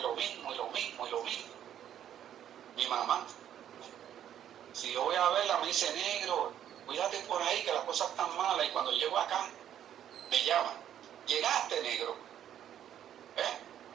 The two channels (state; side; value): quieter; left; 10.4 dB